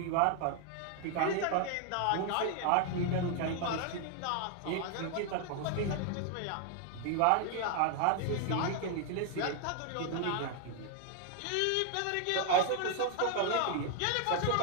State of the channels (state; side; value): different; both; correlation 0.00